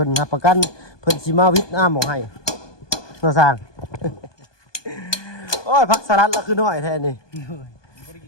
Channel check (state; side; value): late; right; 1.2 ms